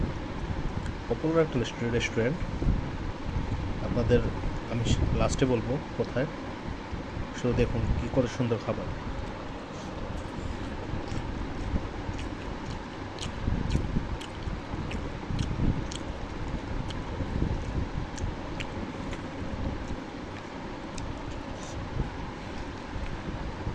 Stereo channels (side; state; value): both; identical; correlation 1.00